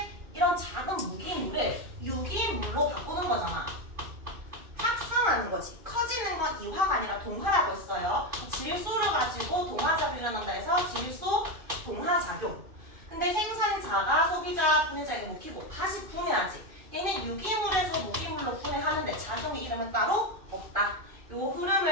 이런 작은 무기물을 유기물로 바꾸는 거잖아. 합성하는 거지. 커지는 건 이화가 아니라 동화라고 했어요. 질소를 가지고 동화작용이 일어난다 해서 질소 동화작용. 근데 생산자가 소비자 분해자에게 먹히고 다시 분해하지. 얘는 유기물에서 무기물로 분해하는데 작용의 이름은 따로 없다. 요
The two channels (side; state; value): left; late; 2.5 ms